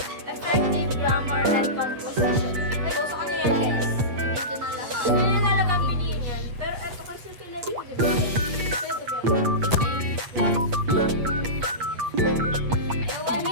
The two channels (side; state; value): left; late; 8.5 ms